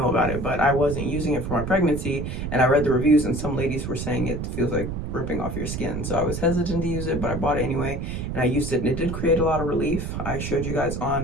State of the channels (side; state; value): right; noise; rumble, 4 dB below the sound